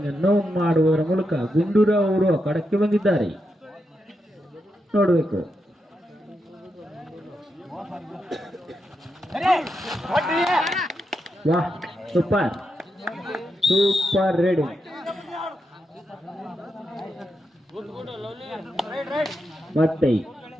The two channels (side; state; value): both; normal; correlation 0.85